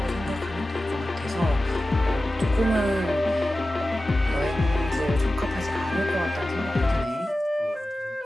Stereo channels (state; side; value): normal; both; correlation 0.95